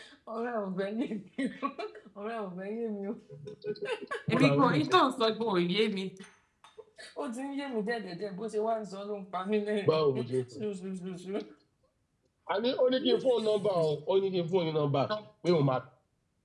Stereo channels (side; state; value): both; identical; correlation 1.00